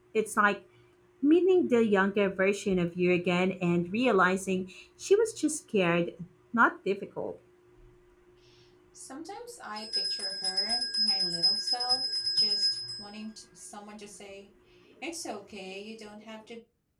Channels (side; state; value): both; identical; correlation 1.00